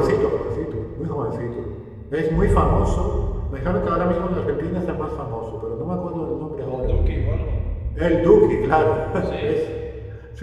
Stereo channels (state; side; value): identical; both; correlation 1.00